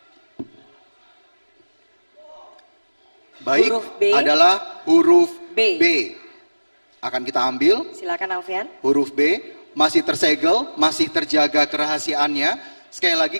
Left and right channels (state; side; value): inverted; both; correlation -1.00